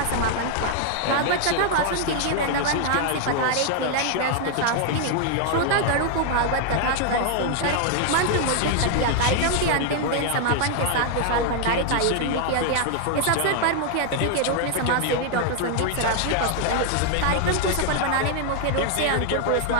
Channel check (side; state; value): both; different; correlation 0.00